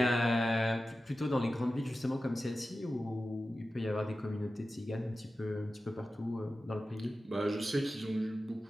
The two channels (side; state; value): both; normal; correlation 0.94